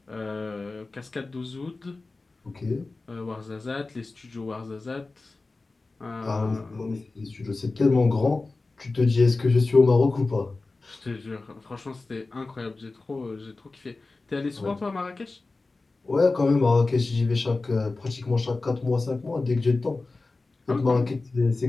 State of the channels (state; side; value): quieter; right; 3.5 dB